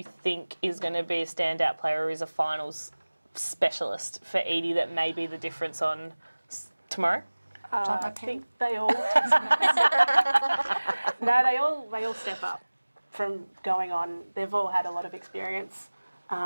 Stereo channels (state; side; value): inverted; both; correlation -1.00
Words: think is going to be a standout player or is a finals specialist for Edie that may be the difference on tomorrow? I think they all. they all step up from going on. They've all had a lot of experience.